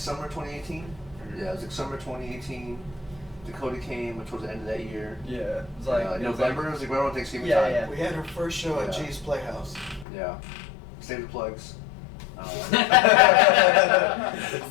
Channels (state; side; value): drops out; right; at 10.1 s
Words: 2018. Yeah, it was like summer 2018. Dakota came towards the end of that year. Yeah, it was like November. It was like right around Thanksgiving Yeah, time. yeah. We had our first show at Yeah. G's Playhouse. Yeah. Save the plugs.